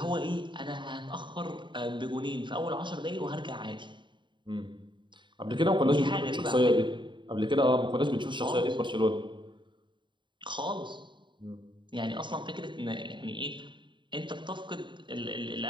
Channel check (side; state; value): left; late; 0.23 ms